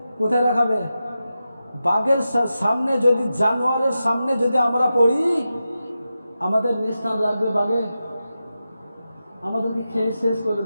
কোথায় রাখাবে? বাঘের সামনে যদি, জানোয়ারের সামনে যদি আমরা পড়ি, আমাদের নিস্থান রাখবে বাঘে, আমাদেরকে খেয়ে শেষ করে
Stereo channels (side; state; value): both; inverted; correlation -0.91